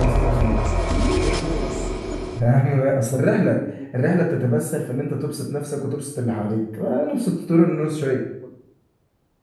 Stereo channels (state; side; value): identical; both; correlation 1.00